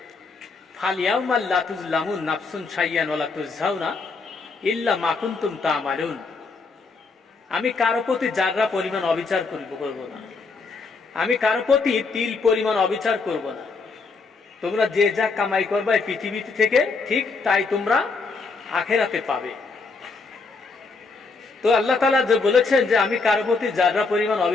ফালিয়াউমা লা তুজলামুন নাফসুন শাইয়ান ওয়া লা তুজজাউনা ইল্লা মা কুনতুম তা'মালুন। আমি কারো প্রতি যাররা পরিমাণ অবিচার করব না, আমি কারো প্রতি তিল পরিমাণ অবিচার করব না। তোমরা যে যা কামাই করবে পৃথিবীতে থেকে, ঠিক তাই তোমরা আখেরাতে পাবে। তো আল্লাহ তাআলা যে বলেছেন যে আমি কারো প্রতি যাররা পরিমাণ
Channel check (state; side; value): quieter; right; 4.2 dB